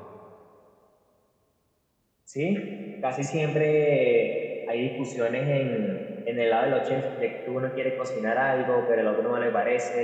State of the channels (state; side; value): identical; both; correlation 1.00